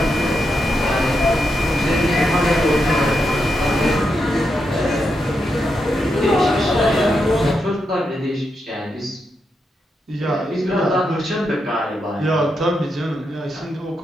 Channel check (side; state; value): both; normal; correlation 0.84